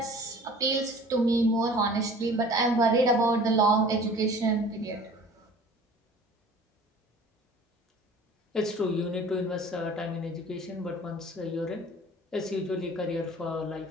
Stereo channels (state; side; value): normal; both; correlation 0.47